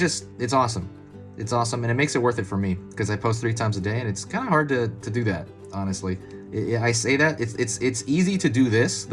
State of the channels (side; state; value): both; identical; correlation 1.00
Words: awesome. It's awesome, and it makes it worth it for me, because I post 3 times a day, and it's kind of hard to do that, honestly. I say that it's easy to do this.